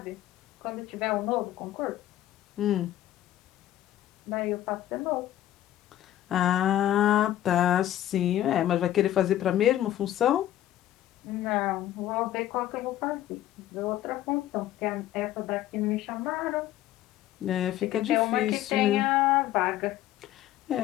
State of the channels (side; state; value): right; quieter; 13.0 dB